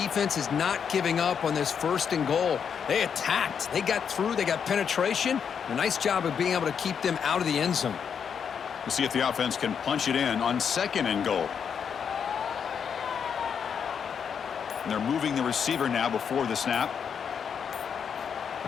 is not giving up on this 1st and goal. They attacked. They got through. They got penetration. A nice job of being able to keep them out of the end zone. We'll see if the offense can punch it in on 2nd and goal. And they're moving the receiver now before the snap.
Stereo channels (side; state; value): right; quieter; 7.2 dB